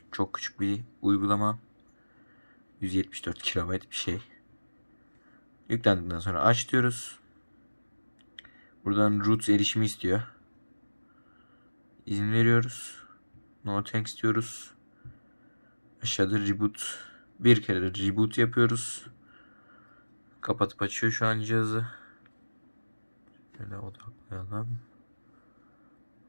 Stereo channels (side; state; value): both; inverted; correlation -1.00